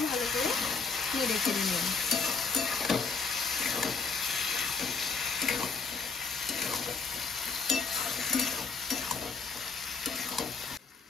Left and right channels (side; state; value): right; quieter; 4.8 dB